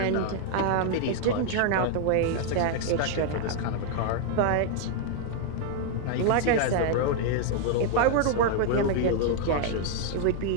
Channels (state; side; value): different; both; correlation 0.00